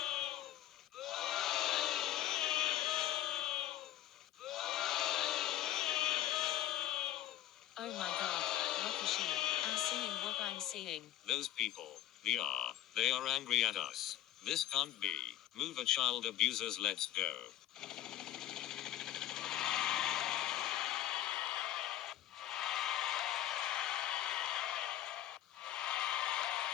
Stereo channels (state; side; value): quieter; right; 13.2 dB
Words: Oh my god, Rakashi, I'm seeing what I'm seeing. Those people, they are angry at us. This can't be. Move a child abusers, let's go.